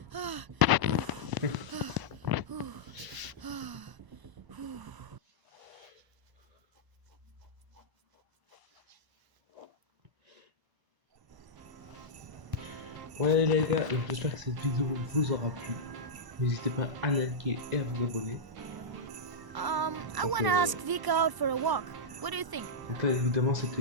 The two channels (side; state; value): left; late; 1.0 ms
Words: Ouais les gars, j'espère que cette vidéo vous aura plu. N'hésitez pas à liker et à vous abonner. I want to ask Vika out for a walk. What do you think? Donc là évidemment